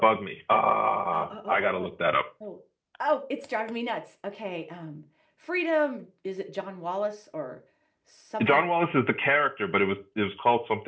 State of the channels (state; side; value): identical; both; correlation 1.00